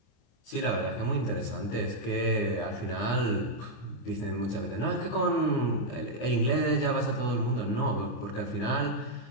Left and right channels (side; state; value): right; late; 25 ms